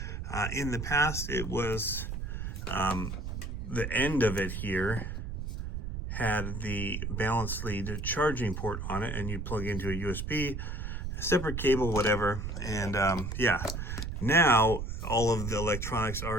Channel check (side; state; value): right; noise; rumble, 5 dB below the sound